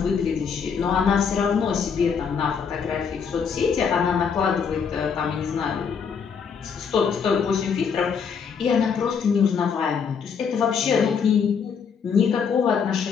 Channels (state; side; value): quieter; right; 6.4 dB